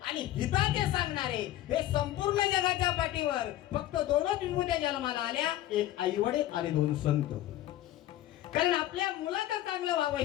आणि हिताचे सांगणारे हे संपूर्ण जगाच्या पाठीवर फक्त 2च विभूत्या जन्माला आल्या, एक आईवडील आणि 2 संत. कारण आपल्या मुलाचं चांगलं व्हावं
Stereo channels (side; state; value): right; quieter; 14.0 dB